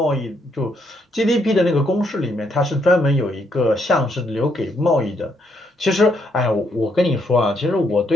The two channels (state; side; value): normal; both; correlation 0.74